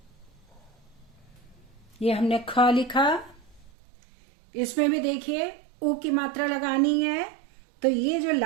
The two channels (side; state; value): left; drops out; at 3.7 s